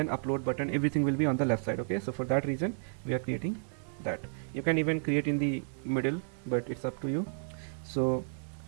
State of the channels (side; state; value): left; silent; digital silence